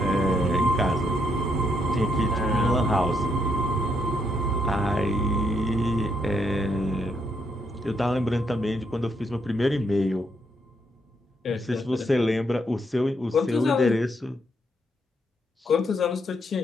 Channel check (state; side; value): normal; both; correlation 0.76